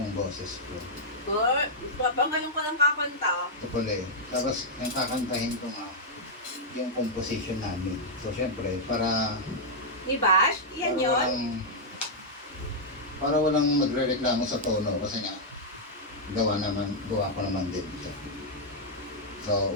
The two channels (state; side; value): normal; both; correlation -0.05